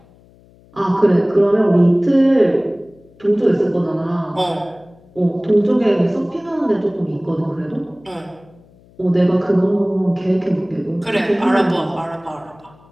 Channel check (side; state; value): left; noise; hum, 28 dB below the sound